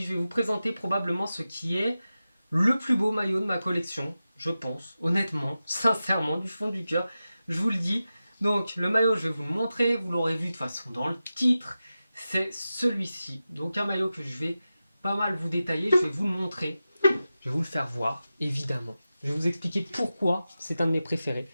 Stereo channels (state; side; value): inverted; both; correlation -0.93